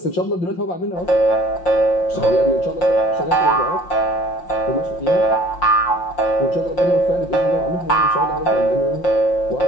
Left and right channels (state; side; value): late; right; 5.7 ms